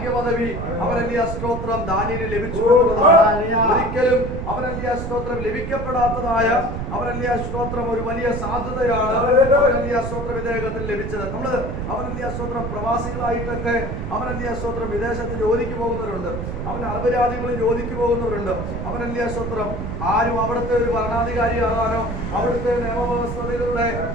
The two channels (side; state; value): right; noise; rumble, 5 dB below the sound